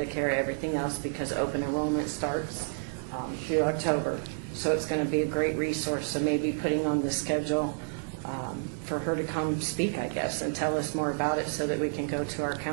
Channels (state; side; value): silent; left; digital silence